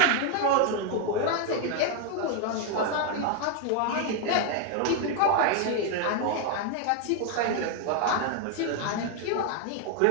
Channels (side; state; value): both; different; correlation 0.01